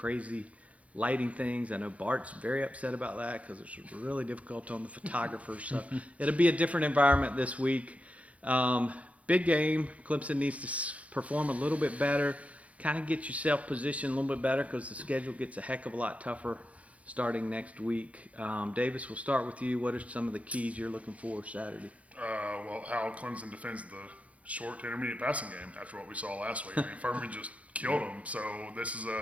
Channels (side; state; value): left; late; 0.066 ms